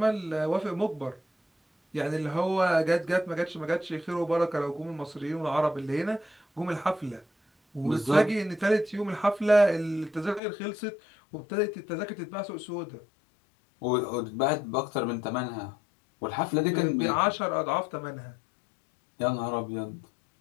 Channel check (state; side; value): drops out; right; at 10.4 s